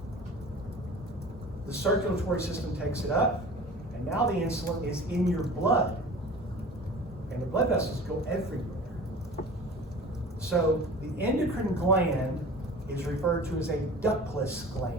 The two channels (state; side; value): normal; both; correlation 0.40